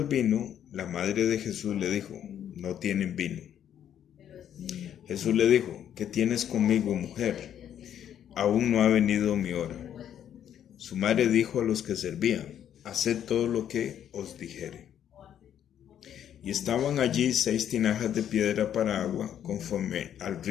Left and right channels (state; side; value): quieter; right; 9.9 dB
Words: vino, la madre de Jesús le dijo, no tienen vino. Jesús le dijo, ¿qué tienes conmigo, mujer? Aún no ha venido mi hora. Su madre dijo a los que servían, haced todo lo que os dijere. Y estaban allí 6 tinajas de piedra para agua, conforme al